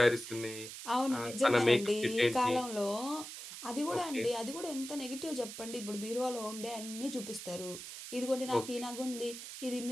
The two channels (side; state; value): right; noise; hiss, 10 dB below the sound